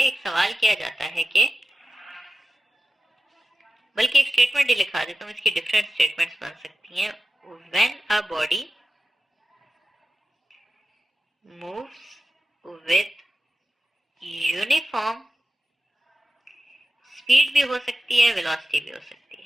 सवाल किया जाता है कि, बल्कि एक स्टेटमेंट ही लिखा देता हूँ, इसकी डिफरेंट स्टेटमेंट्स बन सकती हैं। When a body moves with uniform speed भी हो सकती है, वेलोसिटी भी हो सकती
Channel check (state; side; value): normal; both; correlation 0.93